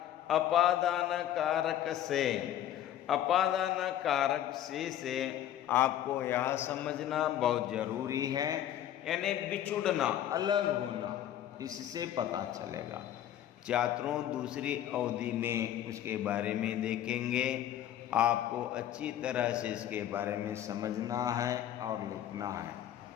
अपादान कारक से, अपादान कारक से आपको यह समझना बहुत जरूरी है, यानी बिछुड़ना, अलग होना, इससे पता चलेगा। छात्रों दूसरी अवधि में उसके बारे में देखेंगे। आपको अच्छी तरह से इसके बारे में समझना है और लिखना है।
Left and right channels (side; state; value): right; quieter; 11.4 dB